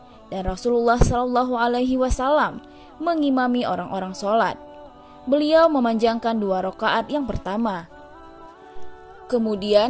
dan Rasulullah SAW mengimami orang-orang sholat. Beliau memanjangkan 2 rakaat yang pertama,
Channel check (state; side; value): identical; both; correlation 1.00